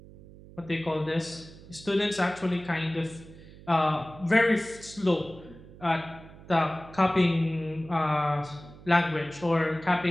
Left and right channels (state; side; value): noise; right; hum, 19 dB below the sound